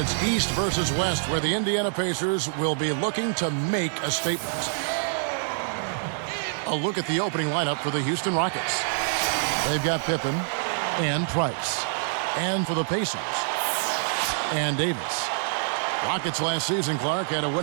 East versus West, where the Indiana Pacers will be looking to make a statement. A look at the opening lineup for the Houston Rockets. They've got Pippen and Price. And for the Pacers, and Davis. Rockets last season, Clark, had a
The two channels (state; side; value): silent; left; digital silence